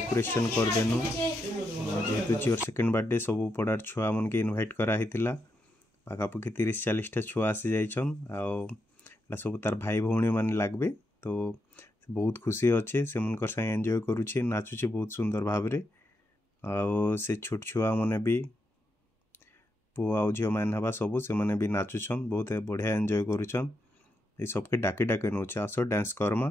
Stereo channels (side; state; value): both; normal; correlation 0.83